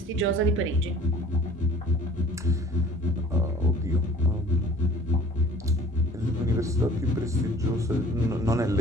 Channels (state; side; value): normal; both; correlation 0.49